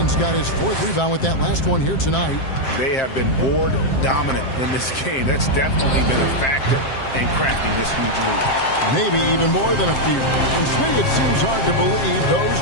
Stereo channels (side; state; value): right; late; 7.6 ms